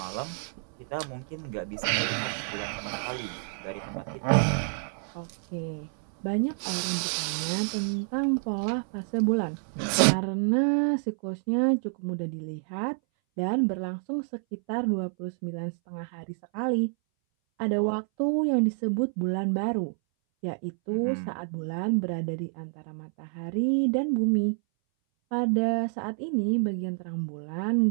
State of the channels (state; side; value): silent; left; 59 dB below the other